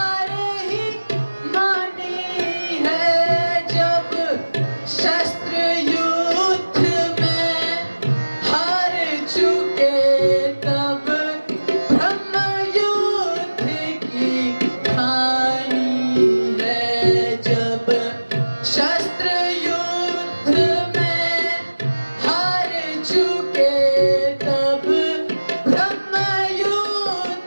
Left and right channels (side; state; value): both; inverted; correlation -1.00